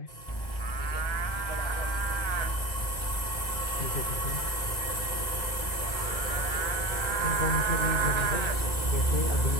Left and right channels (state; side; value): late; right; 2.0 ms